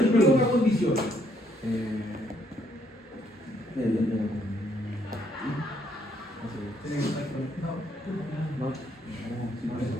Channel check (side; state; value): both; normal; correlation 0.70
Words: pero no una condición.